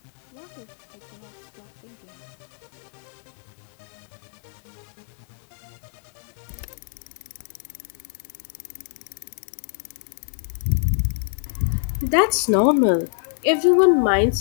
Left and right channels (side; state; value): right; silent; digital silence